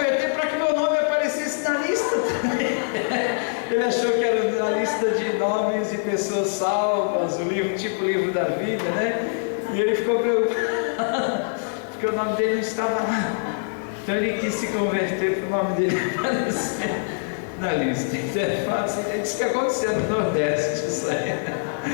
para que meu nome aparecesse na lista também. Ele achou que era na lista de nomes de pessoas salvas, o livro, tipo o livro da vida, né? E ele ficou preocupado, porque o nome dele não estava lá. Então ele quis se converter para o nome dele aparecer na lista. Então é fácil, é isso que aconteceu no Nordeste, isso aí.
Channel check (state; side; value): silent; right; 63 dB below the other